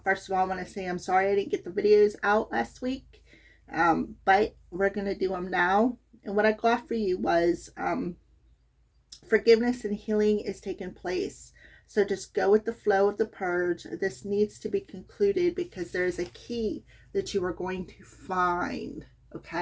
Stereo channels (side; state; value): both; identical; correlation 1.00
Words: first of all, I want to say I'm sorry I didn't get the videos out last week, but we're going to do them now. And what I got for you was forgiveness and healing is taking place. So just go with the flow of the purge. This needs to be concluded because there's a key that you are going to find,